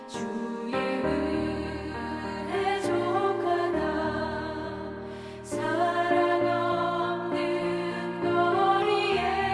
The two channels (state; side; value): identical; both; correlation 1.00